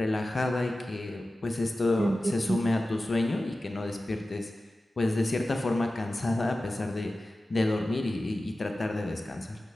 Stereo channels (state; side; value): normal; both; correlation 0.95